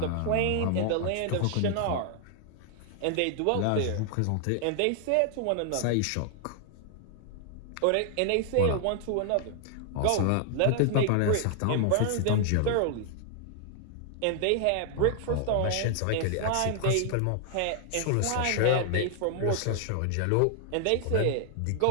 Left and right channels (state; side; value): different; both; correlation 0.00